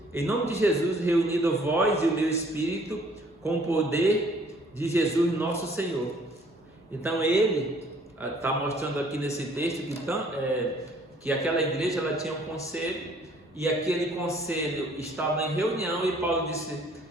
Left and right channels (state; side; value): normal; both; correlation 0.59